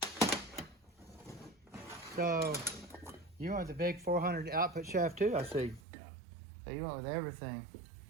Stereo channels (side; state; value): left; drops out; at 5.8 s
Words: So, you went with the big 400 output shaft too, I see. So you went with everything.